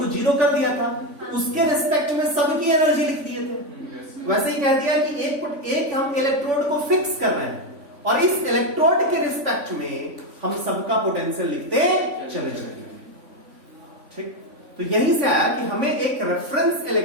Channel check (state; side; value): late; left; 3.5 ms